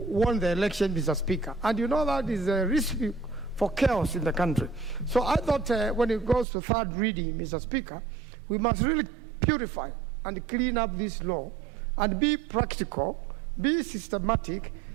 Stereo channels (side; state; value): left; drops out; at 6.5 s